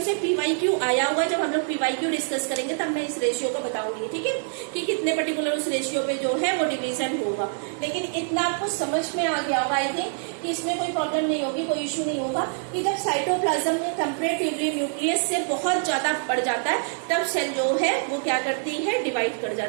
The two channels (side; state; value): left; silent; 62 dB below the other